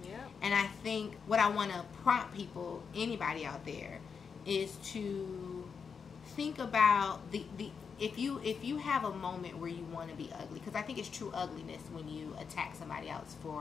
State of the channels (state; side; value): quieter; right; 6.0 dB